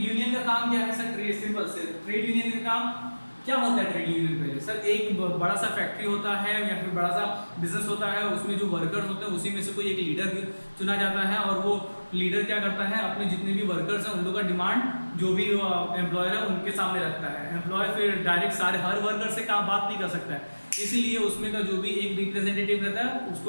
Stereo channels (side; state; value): both; inverted; correlation -1.00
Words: का काम क्या है सर, सिंपल से ट्रेड यूनियन का काम क्या होता है। ट्रेड यूनियन पहले सर एक बड़ा सा फैक्ट्री होता है या फिर बड़ा सा बिजनेस होता है, उसमें जो वर्कर्स होते हैं उसी में से कोई एक लीडर चुना जाता है, और वो लीडर क्या करता है, अपने जितने भी वर्कर्स हैं उन लोगों का डिमांड जो भी एम्प्लॉयर है उनके सामने रखता है। एम्प्लॉयर फिर डायरेक्ट हर वर्कर से काम बात नहीं कर सकता है, इसीलिए उसमें का जो भी एक रिप्रेजेंटेटिव रहता है